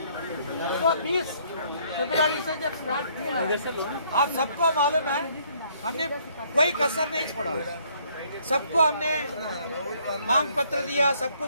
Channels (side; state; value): both; inverted; correlation -0.65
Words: तो 20 फरवरी से जब स्टार्ट किया, आप सबको मालूम है हमने कोई कसर नहीं छोड़ा, सबको हमने मांग पत्र दिया, सब